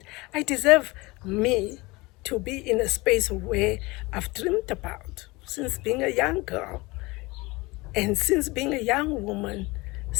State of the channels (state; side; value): quieter; right; 23.2 dB